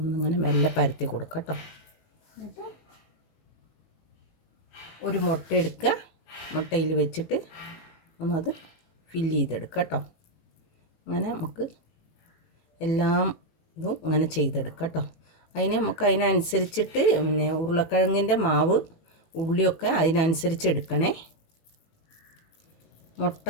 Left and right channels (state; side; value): late; right; 18 ms